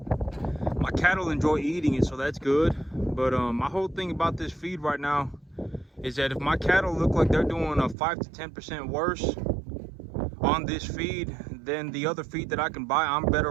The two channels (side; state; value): left; drops out; at 8.0 s